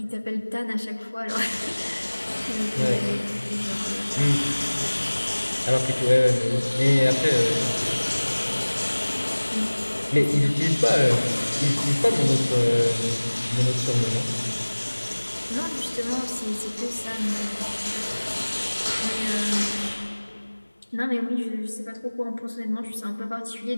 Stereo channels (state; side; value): inverted; both; correlation -1.00